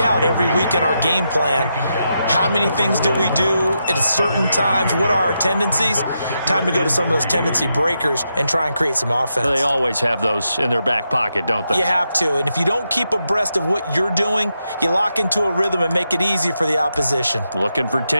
every week in our game plan. How many things do we do at certain times? What are our tendencies? Time to go to some of those tendency breakers and try and create some offense. They always have those in their back pocket, don't they? You have to, and if you don't keep abreast of what you're doing, you lock into a rhythm and make it easy for the opposition. Looking for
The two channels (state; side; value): inverted; both; correlation -0.84